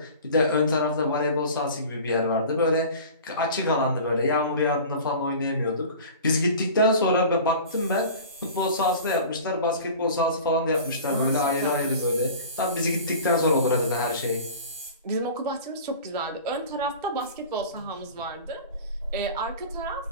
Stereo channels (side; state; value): both; inverted; correlation -0.40